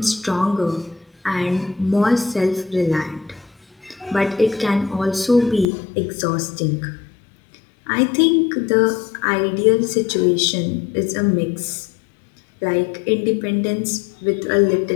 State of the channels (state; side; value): drops out; right; at 5.7 s